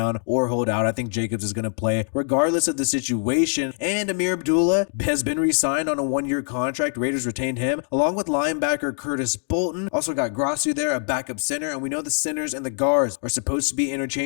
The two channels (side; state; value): right; silent; digital silence